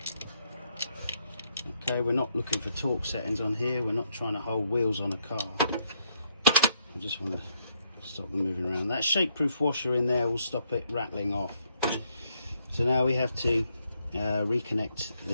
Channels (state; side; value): inverted; both; correlation -0.74